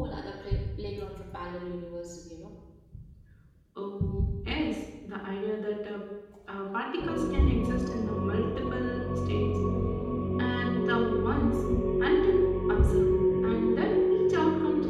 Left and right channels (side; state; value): both; identical; correlation 1.00